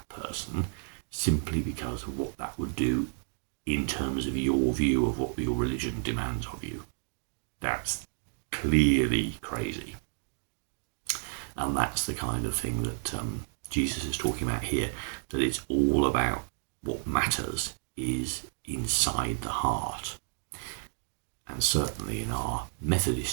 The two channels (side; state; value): left; silent; digital silence